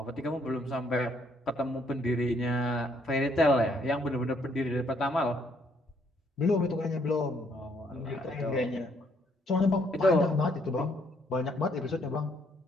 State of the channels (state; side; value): normal; both; correlation 0.69